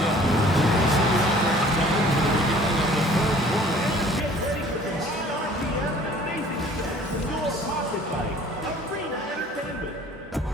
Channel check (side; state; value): both; normal; correlation 0.52